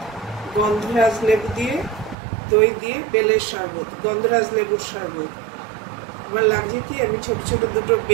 গন্ধরাজ লেবু দিয়ে, দই দিয়ে বেলের শরবত, গন্ধরাজ লেবুর শরবত। আমার লাগছে কি, আমি ছোট ছোট দুটো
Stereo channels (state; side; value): drops out; left; at 2.1 s